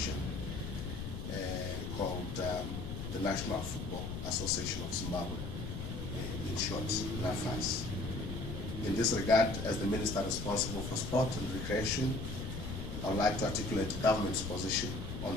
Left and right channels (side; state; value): left; noise; rumble, 5 dB below the sound